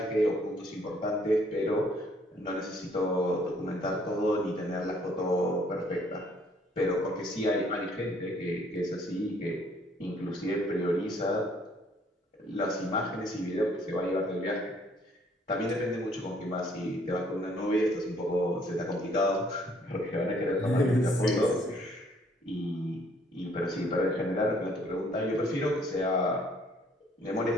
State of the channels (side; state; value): both; normal; correlation 0.63